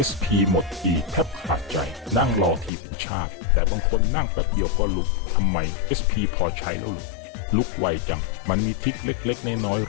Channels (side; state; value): right; drops out; at 2.7 s